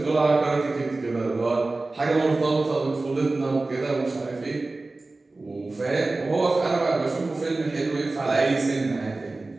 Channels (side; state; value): left; quieter; 3.3 dB